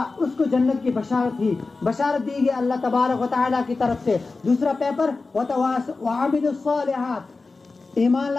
اس کو جنت کی بشارت دی گئی اللہ تبارک و تعالیٰ کی طرف سے۔ دوسرا پیپر وعملوا الصالحات، ایمان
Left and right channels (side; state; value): right; quieter; 3.8 dB